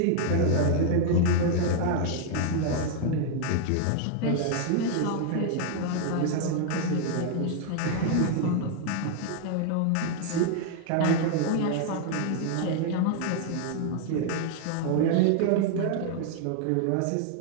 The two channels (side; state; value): both; different; correlation 0.00